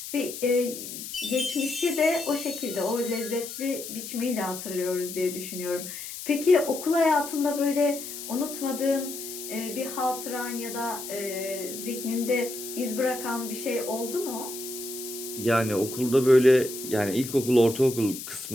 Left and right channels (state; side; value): noise; left; hiss, 9 dB below the sound